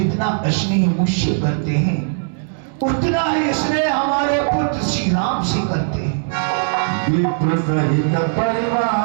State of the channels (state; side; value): silent; left; 67 dB below the other